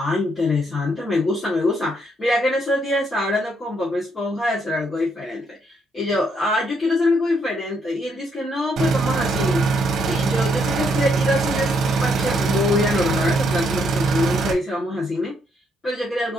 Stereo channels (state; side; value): normal; both; correlation 0.74